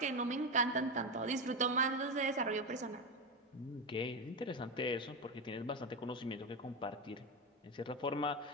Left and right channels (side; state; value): both; normal; correlation 0.14